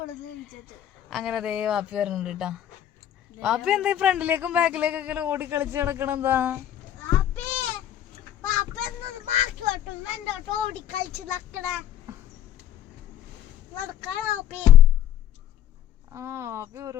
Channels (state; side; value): quieter; right; 11.2 dB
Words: അങ്ങനെ അതേ വാപ്പി വരുന്നുണ്ട് കേട്ടോ. വാപ്പി എന്താ ഫ്രണ്ടിലേക്കും ബാക്കിലേക്കൊക്കെ ഓടി കളിച്ച് കിടക്കണെന്താ? ആ വാപ്പി